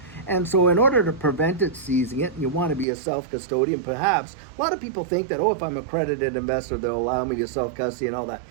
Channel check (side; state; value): left; drops out; at 2.9 s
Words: And so in order to prevent it seizing it, you want to be a self-custodian, perhaps. A lot of people think that, if I'm an accredited investor, they'll allow me to self-custody and all that.